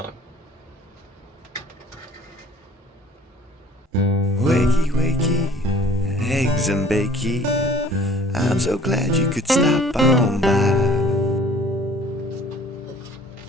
Wakey, wakey, eggs and bakey. I'm so glad you could stop on by.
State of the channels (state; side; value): normal; both; correlation 0.52